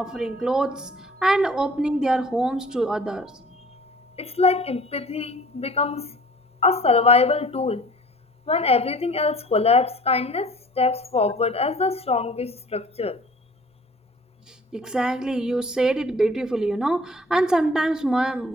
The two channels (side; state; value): both; normal; correlation 0.49